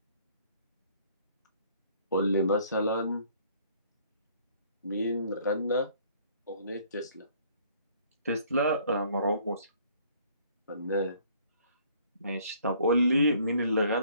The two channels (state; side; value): inverted; both; correlation -0.60